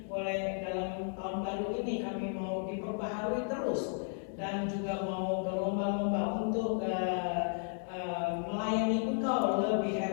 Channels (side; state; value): right; silent; 55 dB below the other